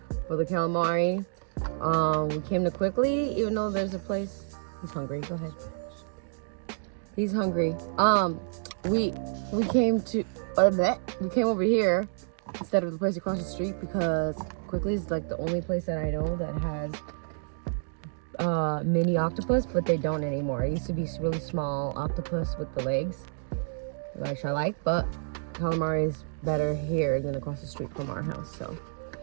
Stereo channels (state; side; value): silent; left; digital silence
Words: for the calamari. We came to Quickly, even though there's a place. He's hungry. Go ahead. He's hungry. We came to we came over here instead of the place across the street because Quickly is like the only place that I know that has mini octopus, but they don't anymore. It used to be really small octopus with the legs, which I like, but calamari is better here than across the street from our house. So